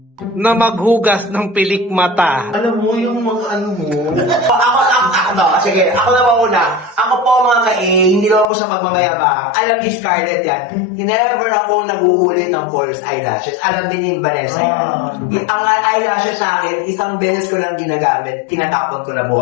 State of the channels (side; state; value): right; drops out; at 8.5 s